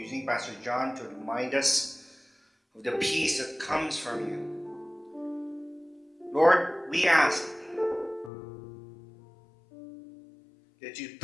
Pastor John to remind us of the peace that comes from you. Lord, we ask that you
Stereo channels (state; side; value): drops out; right; at 8.3 s